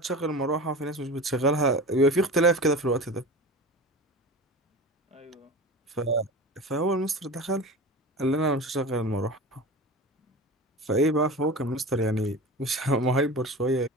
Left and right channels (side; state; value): both; normal; correlation 0.32